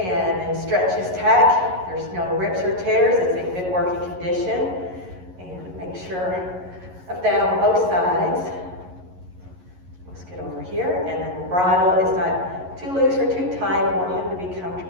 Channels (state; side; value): late; left; 11 ms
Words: in stretches tack, there's no rips or tears. It's in good working condition. And make sure of that on both sides. Let's get over here. And then the bridle is not too loose or too tight. We want him to be